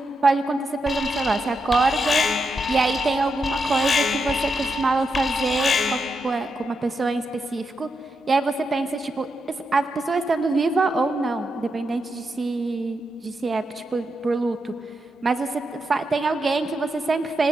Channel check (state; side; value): normal; both; correlation 0.85